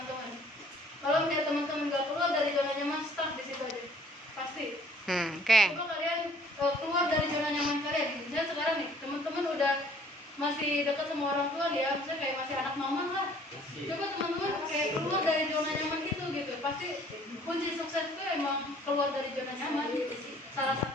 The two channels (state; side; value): normal; both; correlation 0.57